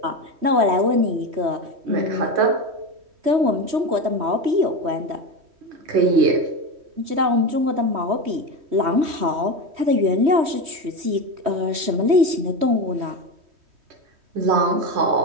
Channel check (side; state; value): left; late; 3.1 ms